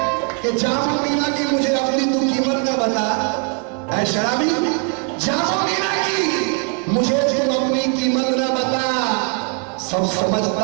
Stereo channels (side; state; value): left; quieter; 36.2 dB